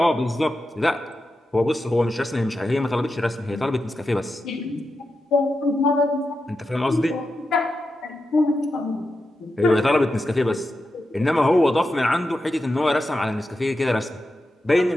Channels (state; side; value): normal; both; correlation 0.89